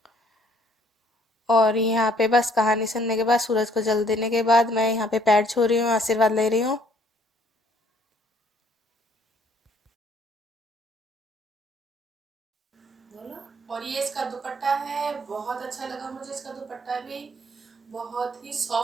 और यहाँ पे बस कहानी सुनने के बाद, सूरज को जल देने के बाद मैं यहाँ पे पैर छू रही हूँ, आशीर्वाद ले रही हूँ। और ये इसका दुपट्टा है, बहुत अच्छा लगा मुझे इसका दुपट्टा भी। बहुत ही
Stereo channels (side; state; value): both; normal; correlation 0.62